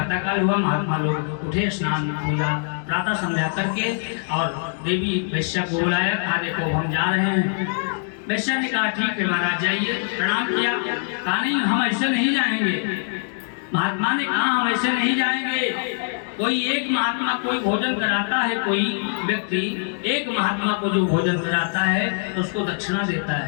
काल हुआ, महात्मा लोग उठे, स्नान पूजा प्रातः संध्या करके, और देवी वैश्या को बुलाया, कहा देखो हम जा रहे हैं। वैश्या ने कहा, ठीक है महाराज जाइए। प्रणाम किया, कहा नहीं हम ऐसे नहीं जाएंगे। महात्मा ने कहा, हम ऐसे नहीं जाएंगे। कोई एक महात्मा कोई भोजन कराता है, कोई व्यक्ति एक महात्मा को जो भोजन कराता है उसको दक्षिणा देता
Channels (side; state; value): right; silent; 63 dB below the other